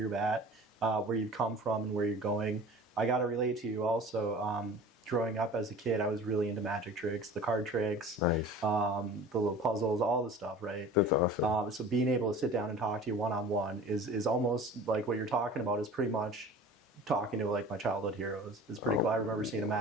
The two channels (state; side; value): normal; both; correlation 0.41